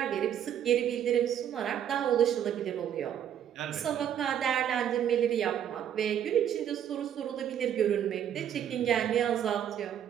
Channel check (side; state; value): left; quieter; 9.7 dB